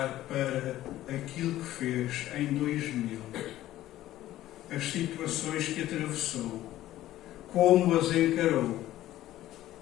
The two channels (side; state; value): right; quieter; 14.3 dB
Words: para aquilo que fez em 2000, as situações que atravessou, como as encarou.